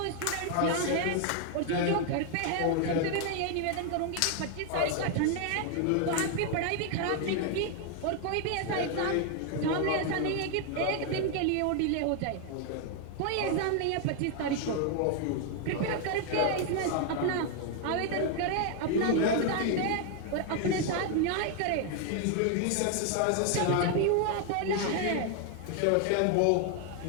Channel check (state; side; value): different; both; correlation 0.00